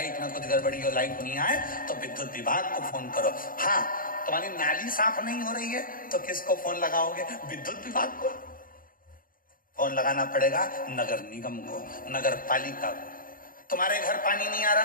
में कुछ गड़बड़ी हो, लाइट नहीं आए तो विद्युत विभाग को फोन करो। हाँ, तुम्हारी नाली साफ नहीं हो रही है तो किसको फोन लगाओगे? विद्युत विभाग को। फोन लगाना पड़ेगा नगर निगम को, नगर पालिका को। तुम्हारे घर पानी नहीं आ रहा,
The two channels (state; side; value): late; right; 0.41 ms